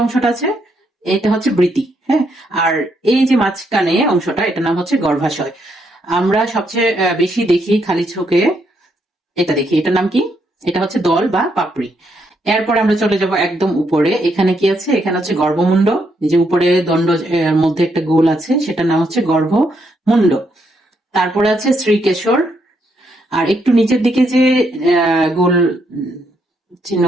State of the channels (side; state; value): both; normal; correlation 0.76